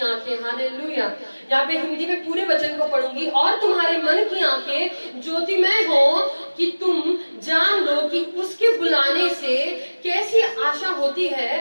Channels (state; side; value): inverted; both; correlation -1.00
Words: आंखें, हालेलुया। यहाँ पे हिंदी में पूरे वचन को पढ़ूंगी। और तुम्हारे मन की आंखें ज्योतिमय हो कि तुम जान लो कि उसके बुलाने से कैसी आशा होती